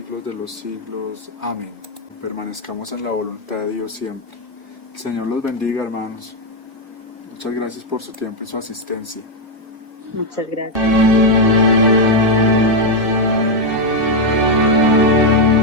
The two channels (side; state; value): both; normal; correlation 0.02